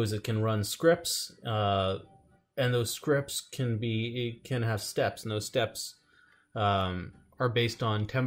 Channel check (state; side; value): identical; both; correlation 1.00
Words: is it can run scripts, and those scripts can have steps, and those steps are based on